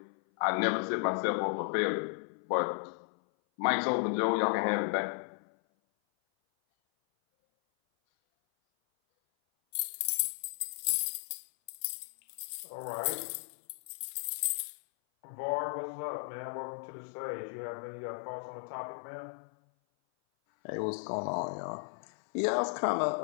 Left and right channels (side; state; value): right; silent; 55 dB below the other